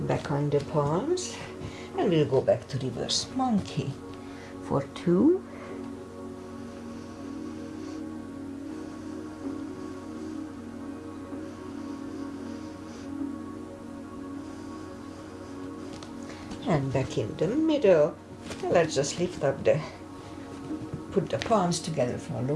Back on the palms, and we'll go back to reverse monkey for 2. And back in the middle. And let's just lift up put the palms together for a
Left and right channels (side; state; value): both; identical; correlation 1.00